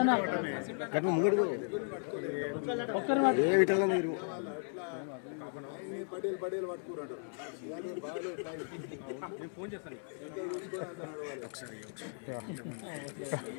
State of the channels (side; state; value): right; silent; 54 dB below the other